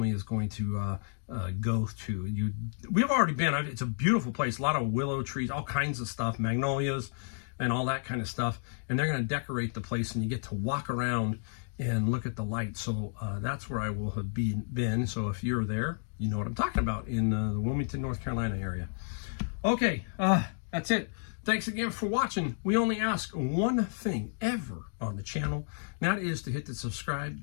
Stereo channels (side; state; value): right; silent; digital silence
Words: is going to go to. We've already been. It's a beautiful place. A lot of willow trees, all kinds of stuff, magnolias, and all that kind of stuff. And they're going to decorate the place, and you get to walk around and look at the lights. So that's where I will have been. So if you're there, you know what I'm talking about in the Wilmington, North Carolina area. Okay, that's it. Thanks again for watching. We only ask one thing ever on the channel, and that is to hit the subscribe,